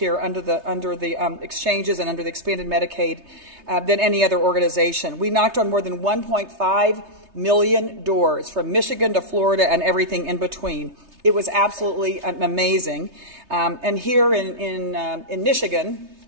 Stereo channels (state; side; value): late; left; 3.3 ms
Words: under the exchanges and under the expanded Medicaid than any other organization. We knocked on more than 1.5 million doors from Michigan to Florida and everything in between. It was absolutely amazing. And here in Michigan,